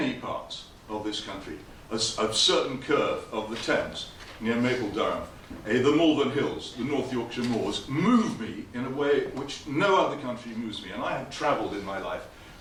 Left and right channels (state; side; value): identical; both; correlation 1.00